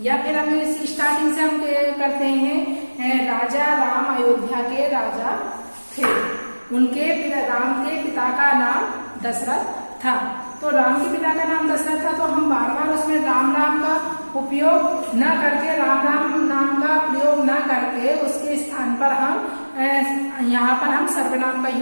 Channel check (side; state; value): both; inverted; correlation -1.00